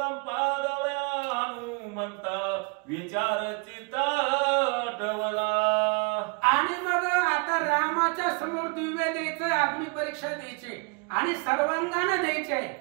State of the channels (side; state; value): left; quieter; 33.5 dB